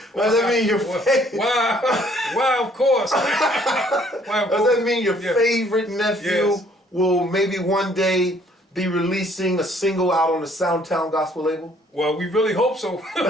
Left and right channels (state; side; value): normal; both; correlation 0.62